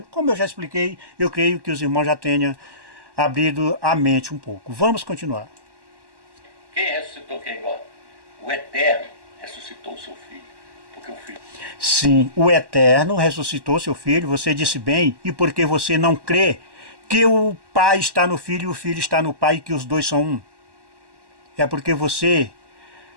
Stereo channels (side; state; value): left; late; 1.1 ms